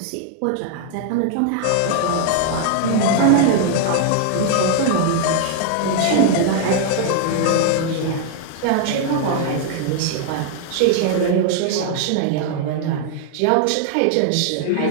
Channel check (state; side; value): different; both; correlation 0.00